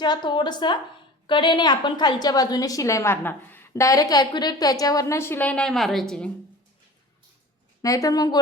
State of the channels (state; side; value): normal; both; correlation 0.40